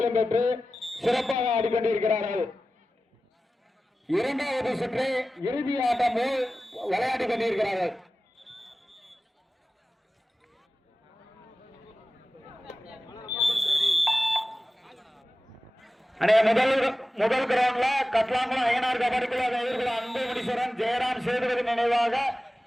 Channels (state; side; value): normal; both; correlation 0.95